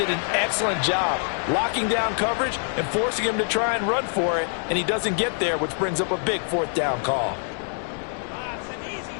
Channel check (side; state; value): right; silent; 62 dB below the other